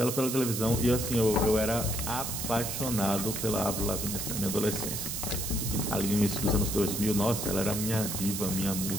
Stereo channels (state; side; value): noise; right; hiss, 3 dB below the sound